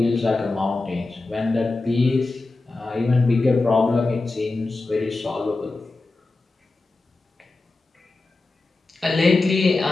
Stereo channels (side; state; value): right; quieter; 3.4 dB